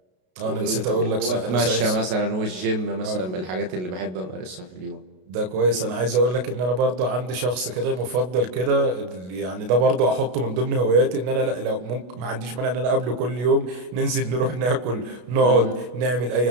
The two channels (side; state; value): left; late; 33 ms